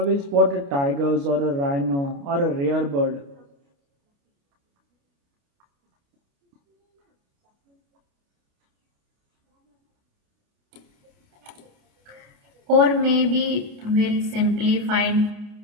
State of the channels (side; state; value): left; late; 29 ms